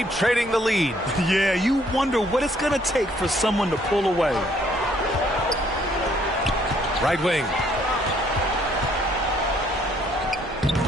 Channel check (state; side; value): normal; both; correlation 0.65